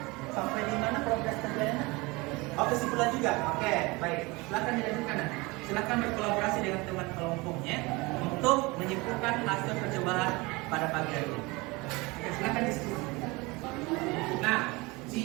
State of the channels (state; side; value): quieter; left; 24.3 dB